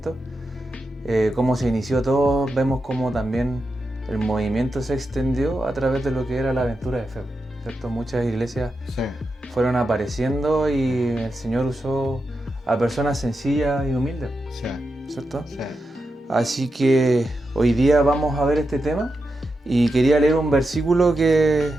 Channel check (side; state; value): both; normal; correlation 0.88